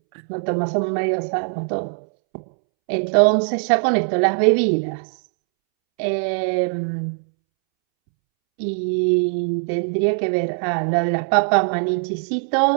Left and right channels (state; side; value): silent; left; 65 dB below the other